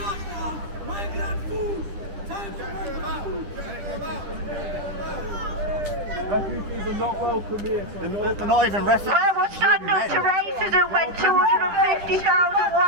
Migrant food! Time for migrant food! Refugees are not welcome here. They're not even refugees. Where was standing up to racism when 250,000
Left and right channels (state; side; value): late; left; 10 ms